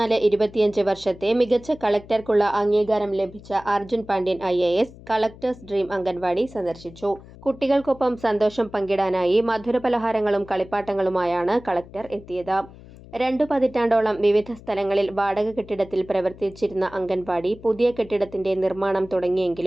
വർഷത്തെ മികച്ച കളക്ടർക്കുള്ള അംഗീകാരം ലഭിച്ച Arjun Pandian IAS collectors dream anganwadi സന്ദർശിച്ചു. കുട്ടികൾക്കൊപ്പം സന്തോഷം പങ്കിടാനായി മധുരപലഹാരങ്ങളും കളിപ്പാട്ടങ്ങളുമായാണ് കളക്ടർ എത്തിയത്. 2 പതിറ്റാണ്ടോളം വിവിധ സ്ഥലങ്ങളിൽ വാടക കെട്ടിടത്തിൽ പ്രവർത്തിച്ചിരുന്ന അംഗൻവാടി പുതിയ കെട്ടിടത്തിന്റെ നിർമ്മാണം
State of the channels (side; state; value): left; noise; hum, 19 dB below the sound